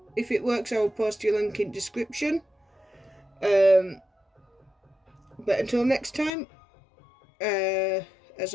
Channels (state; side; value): drops out; right; at 6.3 s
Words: if it works, I will post your link in description. But until next time, as